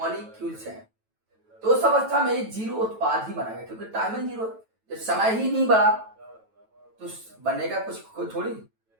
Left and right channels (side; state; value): left; late; 9.1 ms